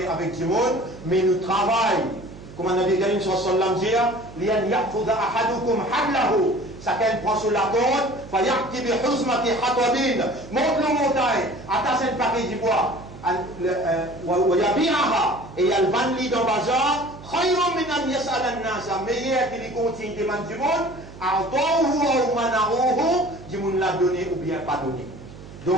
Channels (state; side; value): noise; right; hum, 17 dB below the sound